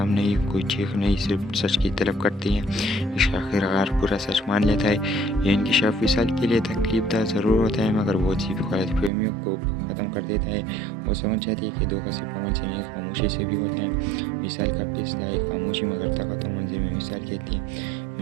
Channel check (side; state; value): left; drops out; at 9.1 s